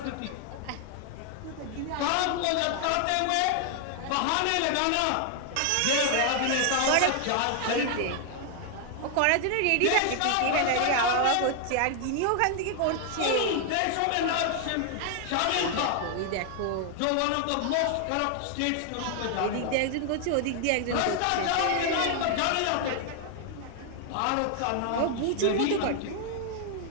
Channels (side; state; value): both; different; correlation 0.00